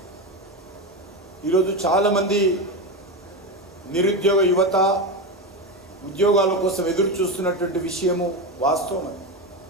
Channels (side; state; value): both; normal; correlation 0.16